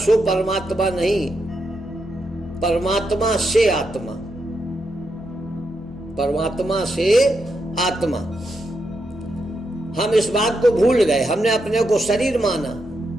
परमात्मा नहीं, परमात्मा से आत्मा, परमात्मा से आत्मा। हम इस बात को भूल गए, हमने अपने को शरीर माना।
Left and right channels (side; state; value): left; noise; rumble, 24 dB below the sound